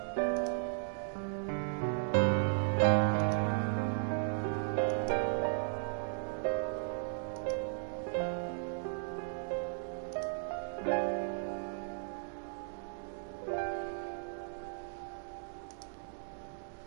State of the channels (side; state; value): left; silent; digital silence